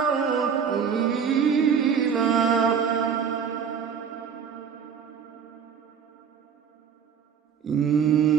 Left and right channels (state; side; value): quieter; left; 7.1 dB